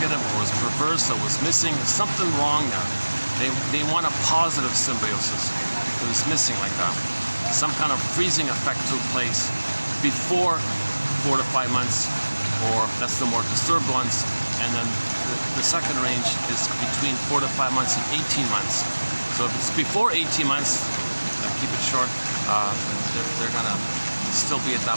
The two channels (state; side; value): inverted; both; correlation -1.00